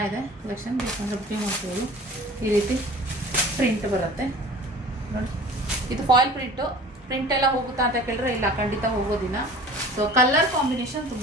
ಕಲೆಕ್ಷನ್. ಬೇಕಂದರೆ ಬುಕಿಂಗ್ ಮಾಡ್ಬೋದು. ಈ ರೀತಿ ಪ್ರಿಂಟ್ ಬರುತ್ತೆ ನೋಡಿ. ಇದು ಫಾಯಿಲ್ ಪ್ರಿಂಟ್ ಎಲ್ಲ ಹೋಗುತ್ತಾ ಅಂತ ಕೇಳಿದ್ರೆ ಇಲ್ಲ, ಖಂಡಿತ ಹೋಗೋದಿಲ್ಲ. ಸೊ ಕಲರ್ ಕಾಂಬಿನೇಷನ್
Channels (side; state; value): both; normal; correlation 0.44